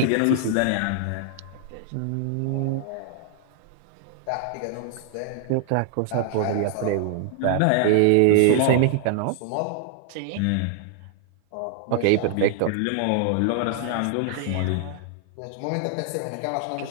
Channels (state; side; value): different; both; correlation 0.00